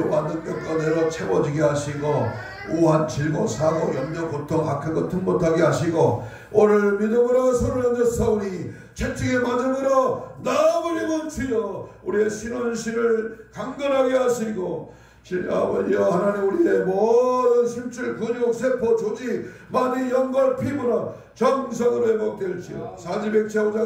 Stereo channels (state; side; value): identical; both; correlation 1.00